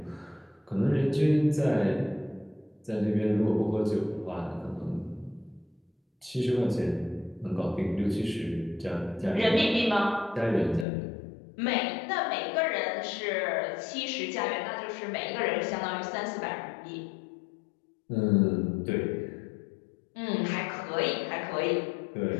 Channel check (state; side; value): drops out; right; at 10.9 s